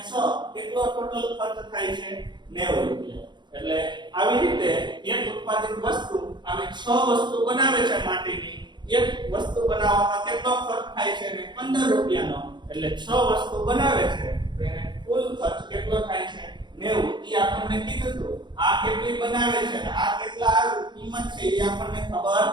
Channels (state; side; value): late; left; 0.22 ms